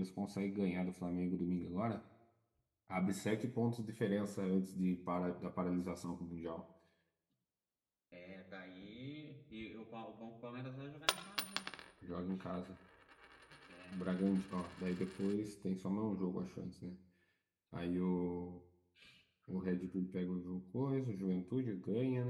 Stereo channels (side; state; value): both; identical; correlation 1.00